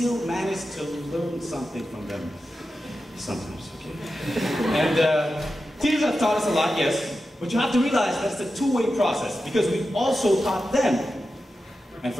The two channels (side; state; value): both; normal; correlation 0.91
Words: manage to learn something from them. Sometimes, okay? And teachers have taught us a lot, yes, but you have to realize that's a two-way process, because we've also taught them. And